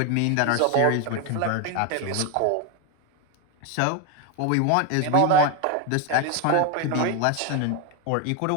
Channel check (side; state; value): both; different; correlation 0.01